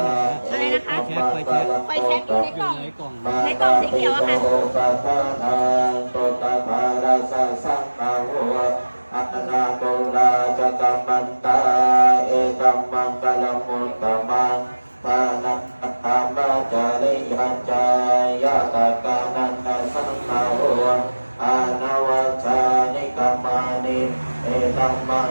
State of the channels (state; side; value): inverted; both; correlation -1.00